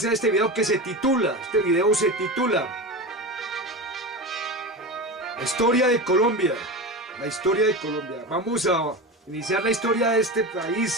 este video que se titula, Historia de Colombia. La historia de Colombia. Vamos a iniciar la historia de este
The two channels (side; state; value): both; normal; correlation 0.25